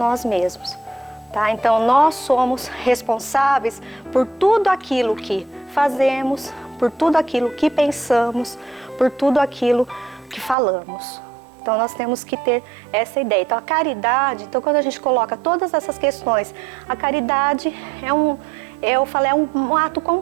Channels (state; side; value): drops out; left; at 10.6 s